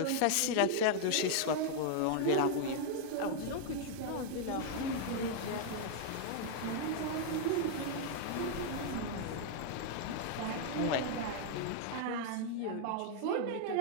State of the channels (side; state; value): both; different; correlation 0.00